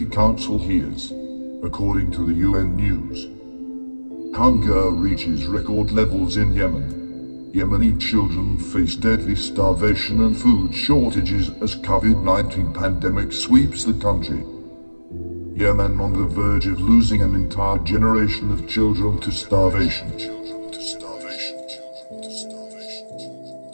Council hears, according to the UN News. Hunger reaches record levels in Yemen. Yemeni children face deadly starvation and food shortages as COVID-19 pandemic sweeps the country. Yemen on the verge of losing an entire generation of children to starvation.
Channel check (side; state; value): both; inverted; correlation -1.00